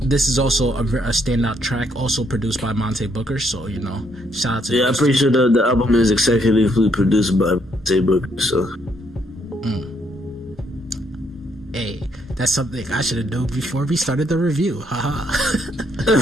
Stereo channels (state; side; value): normal; both; correlation 0.72